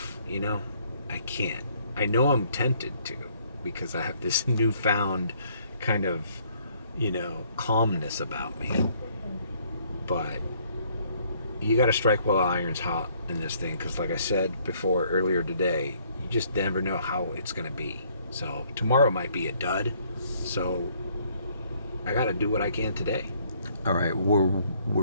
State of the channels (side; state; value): both; inverted; correlation -0.64